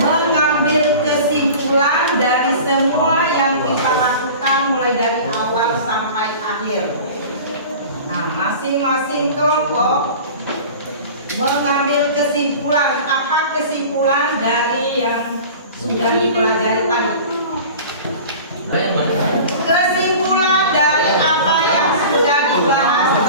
kesimpulan dari semua yang kita lakukan mulai dari awal sampai akhir. Nah, masing-masing kelompok mengambil kesimpulan. Apa kesimpulan dari yang sudah dipelajari tadi? Kesimpulan dari apa yang sudah dibahas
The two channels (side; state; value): both; inverted; correlation -0.39